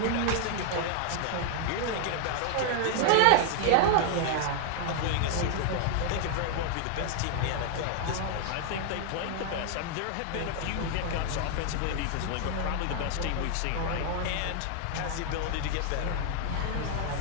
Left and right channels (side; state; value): both; different; correlation 0.00